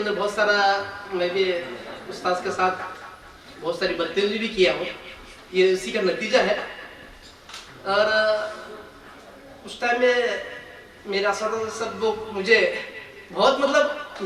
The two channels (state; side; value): identical; both; correlation 1.00